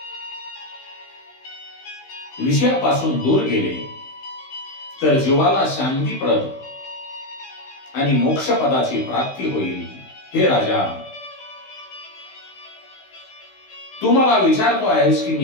विषयापासून दूर गेले, तर जीवाला शांतीप्रद आणि मोक्षपदाची प्राप्ती होईल. हे राजा, तू मला विचारतो आहेस की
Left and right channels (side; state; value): right; late; 16 ms